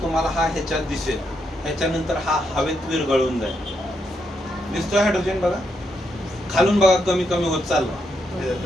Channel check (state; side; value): normal; both; correlation 0.80